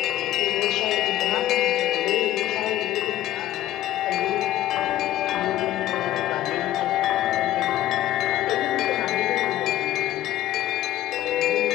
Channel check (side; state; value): right; quieter; 14.0 dB